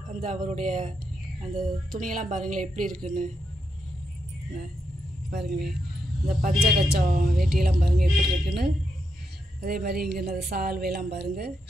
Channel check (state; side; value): normal; both; correlation 0.82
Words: அந்த அவருடைய அந்த துணியெல்லாம் பாருங்களேன் எப்படி இருக்குன்னு பாருங்களேன். இந்த பஞ்சகச்சம் வேட்டியெல்லாம் பாருங்கள் எப்படி இருக்குன்னு. அதே மாதிரி இங்கே இந்த சால்வையெல்லாம் பாருங்கள்